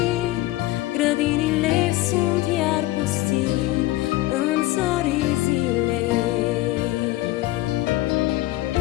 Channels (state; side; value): quieter; right; 17.2 dB